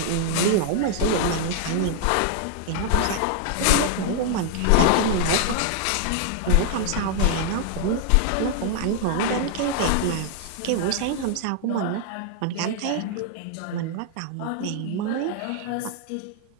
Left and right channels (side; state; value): both; different; correlation 0.00